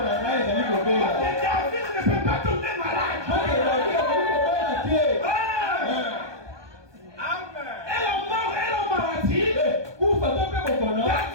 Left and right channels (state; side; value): late; left; 1.2 ms